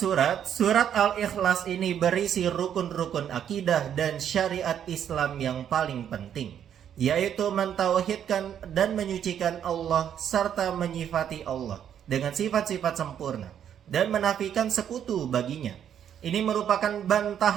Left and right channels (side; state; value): left; quieter; 9.3 dB